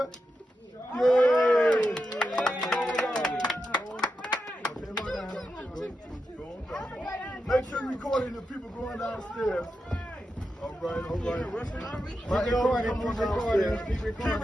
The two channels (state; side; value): normal; both; correlation 0.88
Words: Yay! Make sure you recording the people going downstairs. All right. My elder come on downstairs.